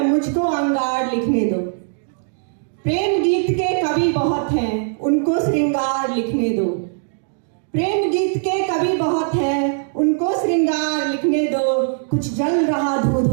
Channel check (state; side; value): silent; left; digital silence